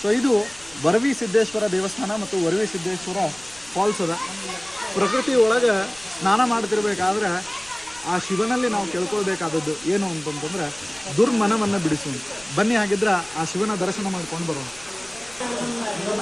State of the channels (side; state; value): left; noise; rumble, 24 dB below the sound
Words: ಇದು ವರವಿ ಸಿದ್ದೇಶ್ವರ ದೇವಸ್ಥಾನ ಮತ್ತು ವರವಿ ಸಿದ್ದೇಶ್ವರ ಫಾಲ್ಸ್ ಅದ. ಪ್ರಕೃತಿ ಒಳಗೆ ಸ್ನಾನ ಮಾಡ್ತಿರ್ಬೇಕಾದ್ರೆ ಆ ಶಿವನಲ್ಲಿ ನಾವು ಕೇಳ್ಕೊಳ್ಬೇಕಾದದ್ದು ಏನು ಅಂತಂತಂದ್ರೆ ದುರ್ಮನವನ್ನು ಬಿಡಿಸು. ಬನ್ನಿ, ಹಾಗಿದ್ರೆ ಆ ಶಿವನ ದರ್ಶನ ಮಾಡ್ಕೊಂಡು ಬರೋಣ.